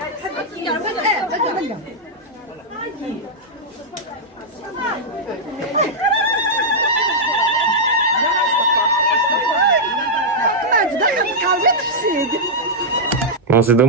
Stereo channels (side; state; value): both; normal; correlation -0.07